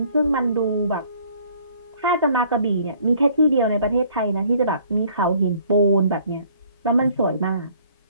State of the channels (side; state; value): both; inverted; correlation -0.58